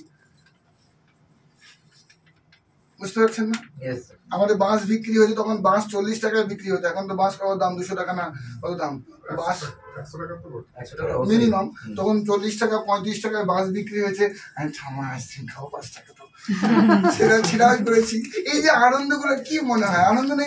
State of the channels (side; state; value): both; identical; correlation 1.00